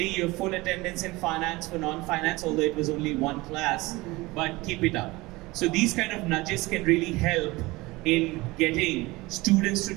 your full attendance in finance for non-finance, although it was only one class, but keep it up. So these kind of nudges can really help in getting students to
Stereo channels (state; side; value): quieter; left; 21.5 dB